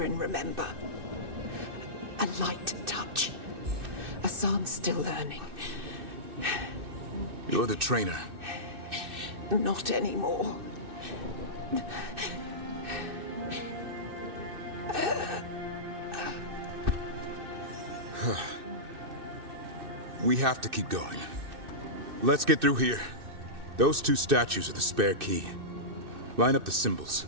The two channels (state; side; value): late; left; 2.6 ms